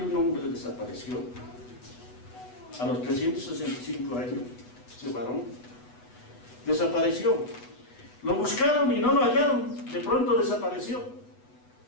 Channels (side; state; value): right; late; 8.1 ms